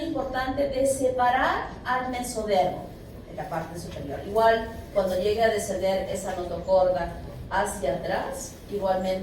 de separar al mesodermo en la parte superior. Igual, cuando llegue a descender esa notocorda hacia atrás,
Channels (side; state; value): both; identical; correlation 1.00